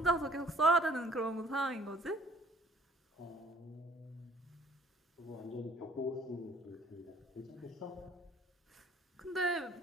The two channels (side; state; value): both; normal; correlation 0.57